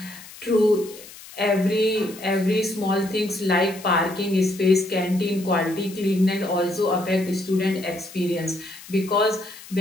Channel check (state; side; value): noise; left; hiss, 17 dB below the sound